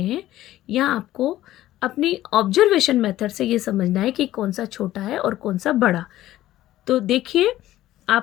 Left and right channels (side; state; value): right; quieter; 14.5 dB